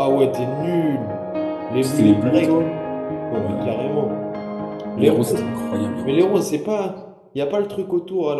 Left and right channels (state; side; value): identical; both; correlation 1.00